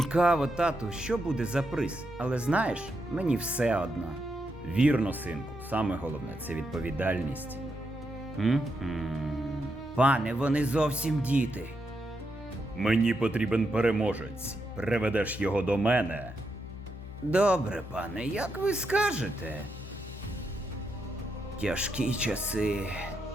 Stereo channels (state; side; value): normal; both; correlation 0.83